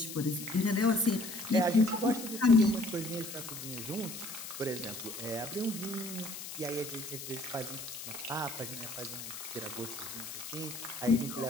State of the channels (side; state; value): left; noise; hiss, 9 dB below the sound